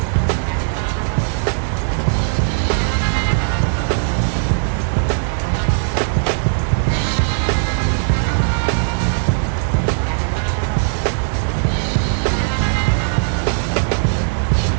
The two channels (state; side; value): silent; left; digital silence